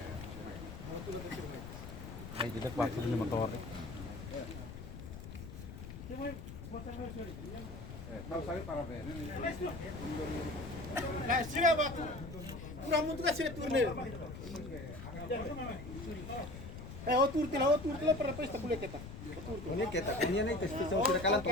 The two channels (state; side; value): noise; left; rumble, 10 dB below the sound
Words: Ay, tidak waktu ini motor. Nah, sila ba? Kurang mo tuh kasih turne. Otur tila para pesta boleh kita. Ini kita, ini nih tes tes sudah kalah